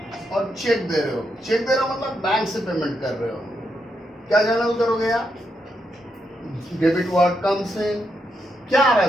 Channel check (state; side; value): normal; both; correlation 0.82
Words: और चेक दे रहे हो। चेक दे रहे हो मतलब बैंक से पेमेंट कर रहे हो। क्या जर्नल करोगे यार? Debit word comes in. क्या आ रहा